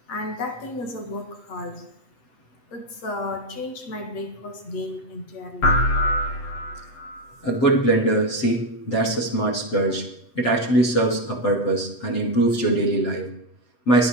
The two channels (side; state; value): right; late; 8.0 ms